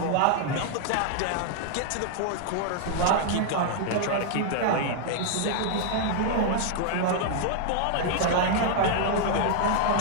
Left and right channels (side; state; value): both; different; correlation 0.00